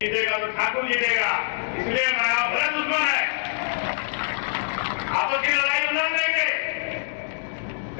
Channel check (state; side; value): silent; right; digital silence